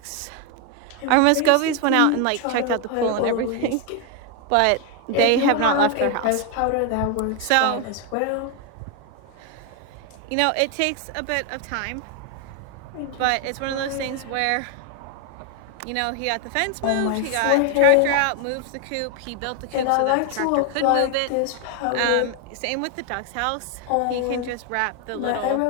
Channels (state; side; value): different; both; correlation 0.01